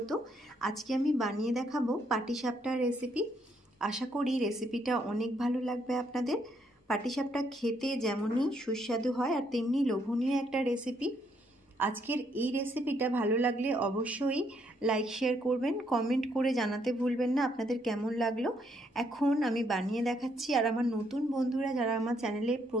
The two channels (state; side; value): normal; both; correlation 0.72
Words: আজকে আমি বানিয়ে দেখাবো পাটিসাপটার রেসিপি। আশা করি রেসিপিটা অনেক ভালো লাগবে আপনাদের। পাটিসাপটা খেতে যেমনই সুস্বাদু হয় আর তেমনি লোভনীয় একটা রেসিপি। আজকের এই রেসিপিটা ভালো লাগলে অবশ্যই লাইক শেয়ার করবেন, কমেন্ট করে জানাতে ভুলবেন না আপনাদের কেমন লাগলো। এখন আমি বানিয়ে দেখাচ্ছি। আর আমার নতুন বন্ধুরা যারা আমার চ্যানেলে